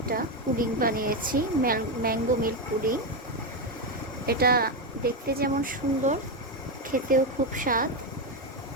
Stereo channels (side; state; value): both; normal; correlation 0.09